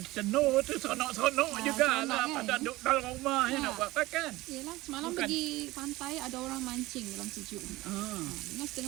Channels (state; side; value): quieter; left; 19.2 dB